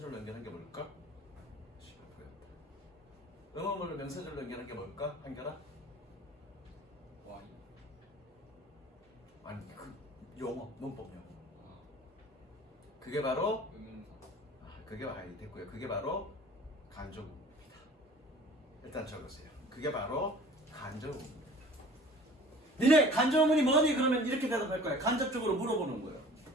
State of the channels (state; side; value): normal; both; correlation 0.46